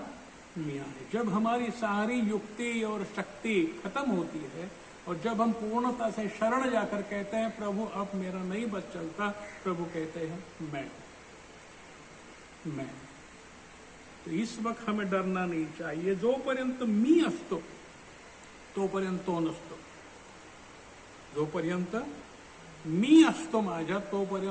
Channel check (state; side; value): identical; both; correlation 1.00